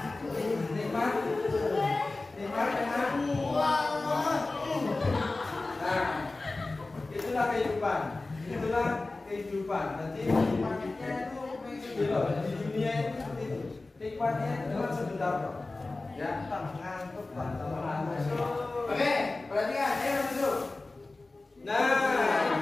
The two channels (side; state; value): right; quieter; 3.3 dB